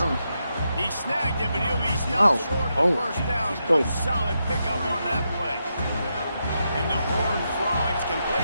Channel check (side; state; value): both; inverted; correlation -0.84